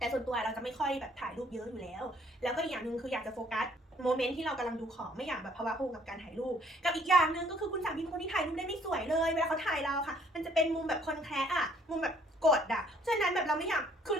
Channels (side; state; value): both; normal; correlation 0.61